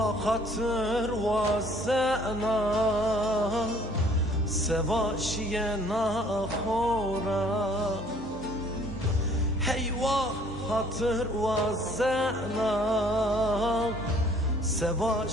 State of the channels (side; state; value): both; normal; correlation 0.57